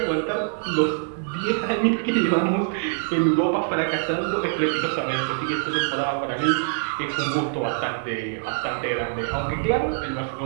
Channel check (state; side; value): silent; left; digital silence